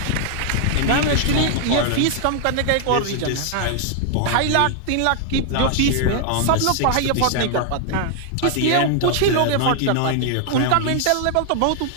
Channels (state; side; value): different; both; correlation 0.00